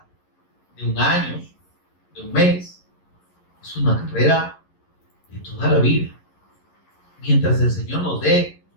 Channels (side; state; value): right; late; 11 ms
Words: de un año, de un mes. Es una carrera de toda la vida. Mientras el Señor nos dé